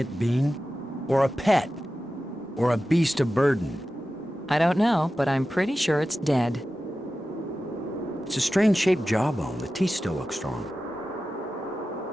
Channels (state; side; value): normal; both; correlation 0.94